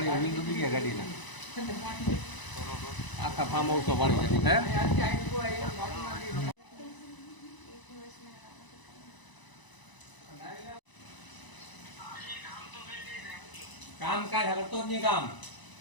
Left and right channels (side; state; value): right; late; 1.0 ms